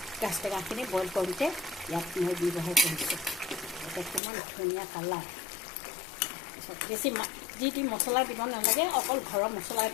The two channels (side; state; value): right; drops out; at 4.2 s